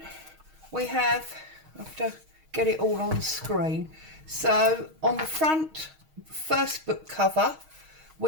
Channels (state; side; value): late; left; 6.4 ms